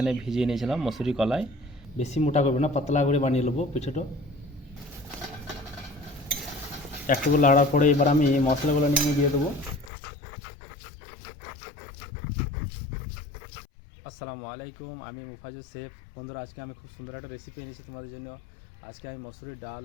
ভিজিয়ে নিয়েছিলাম মসুরি কলাই। বেশি মোটা করবে না, পাতলা করে বানিয়ে নেবো পিঠেটা। একটু লাড়ার পরে এবার আমি মশলাগুলো নিয়ে দিয়ে দেবো। আসসালামু আলাইকুম, আমি মুফাজুল শেফ। বন্ধুরা, আজকে আমি খুব সুন্দর একটা রেসিপি এনেছি তোমাদের জন্য। আজকে আমি মসুরির ডাল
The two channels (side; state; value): right; drops out; at 9.9 s